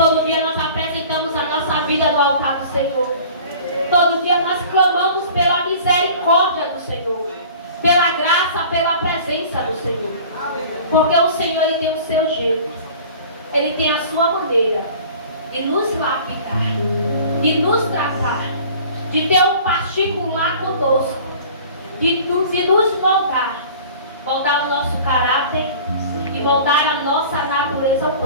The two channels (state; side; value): inverted; both; correlation -0.44